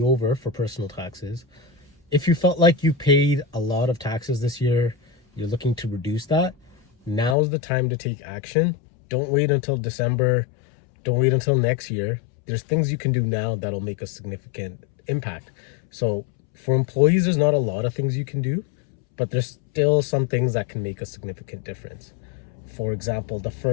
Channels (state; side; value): drops out; right; at 7.4 s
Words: over for personal taxes. If you felt like you paid a lot of taxes this year, you're looking to reduce that, now's the time to take action. Don't wait until December. Don't wait until next year. There's things you can do now that'll make a significant impact. So for employees, there's not a lot of things you can do, but there's still some things that can make a significant difference. For example, the